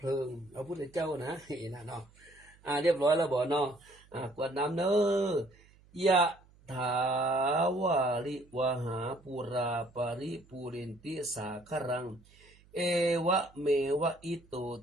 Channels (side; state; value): right; noise; hum, 28 dB below the sound